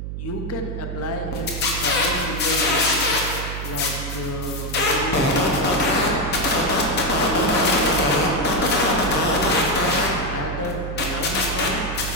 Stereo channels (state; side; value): noise; right; hum, 6 dB below the sound